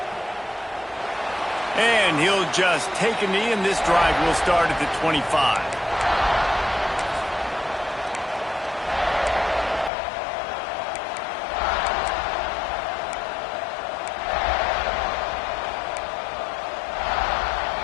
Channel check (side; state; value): right; drops out; at 9.9 s